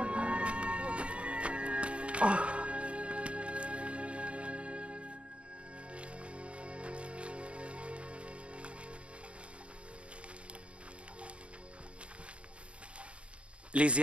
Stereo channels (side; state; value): left; late; 0.060 ms